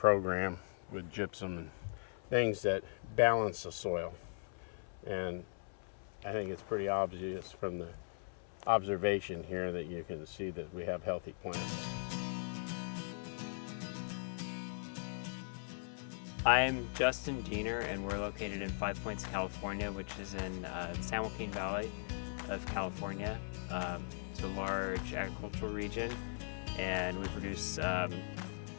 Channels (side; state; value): right; silent; 52 dB below the other